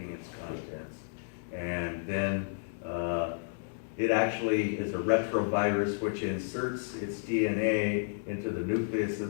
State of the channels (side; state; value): right; silent; digital silence